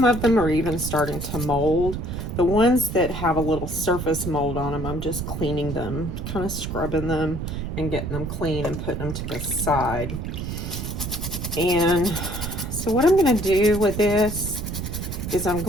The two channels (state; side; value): noise; right; rumble, 5 dB below the sound